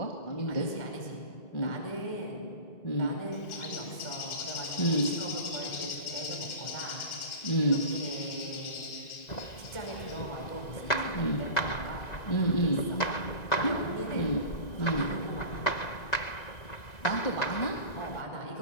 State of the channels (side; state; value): right; late; 1.9 ms